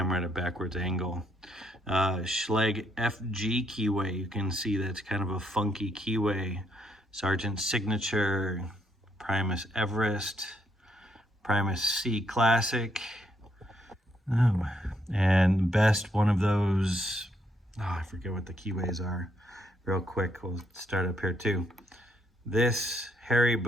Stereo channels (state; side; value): normal; both; correlation 0.74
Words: at a backwards angle. Schlage FG keyway, you can see that's kind of a funky keyway. Sargent's Signature, Primus Everest, Primus C Classic. Oh, and best one of those, I forget what the keyways are. Real quick, we'll start up here too. This Harry